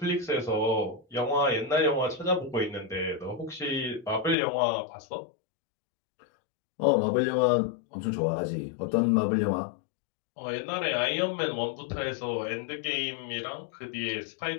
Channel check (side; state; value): right; drops out; at 4.4 s